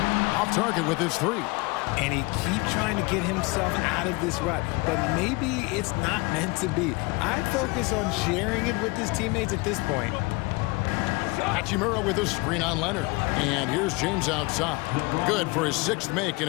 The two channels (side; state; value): right; quieter; 25.8 dB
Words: Off target with his 3. And he keeps trying to get himself out of this rut, but maybe it's not meant to be. I'd focus on sharing it with his teammates at this point. Hachimura with a screen on Leonard. And here's James outside. Good for his 6th make,